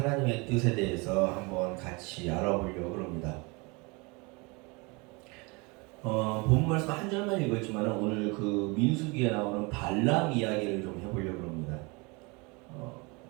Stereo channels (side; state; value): left; quieter; 27.9 dB